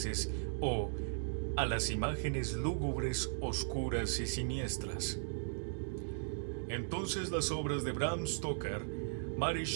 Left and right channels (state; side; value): silent; left; digital silence